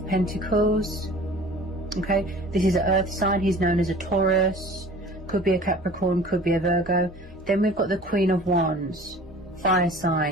Pentacles. Okay, this is an earth sign, he's known as a Taurus, could be a Capricorn, could be a Virgo. Then we've got the Queen of Wands, fire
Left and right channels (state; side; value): normal; both; correlation 0.44